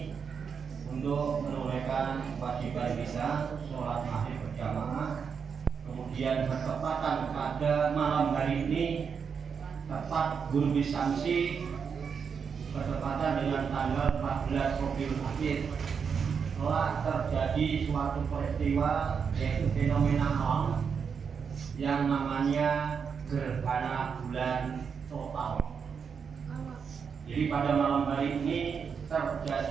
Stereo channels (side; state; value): left; quieter; 6.4 dB